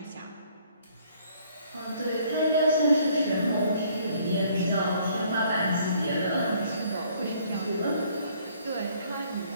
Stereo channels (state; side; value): inverted; both; correlation -0.62